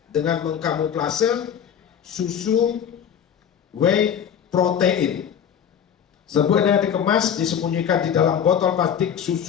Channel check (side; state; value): right; quieter; 8.5 dB